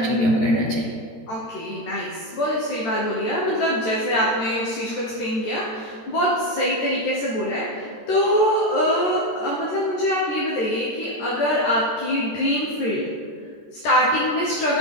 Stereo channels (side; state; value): right; late; 13 ms